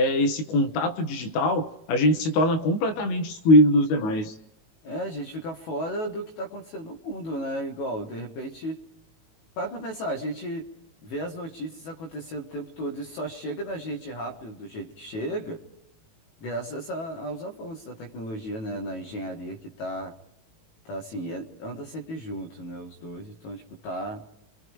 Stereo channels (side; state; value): right; late; 19 ms